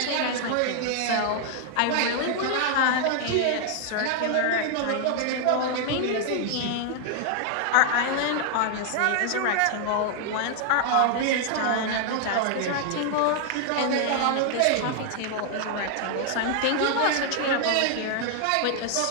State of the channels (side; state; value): both; different; correlation 0.00